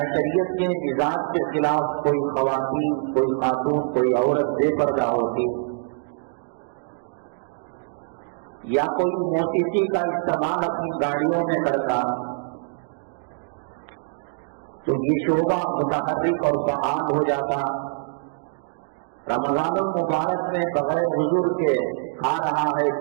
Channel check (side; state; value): left; silent; digital silence